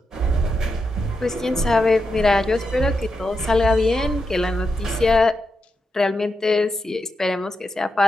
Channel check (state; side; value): normal; both; correlation 0.86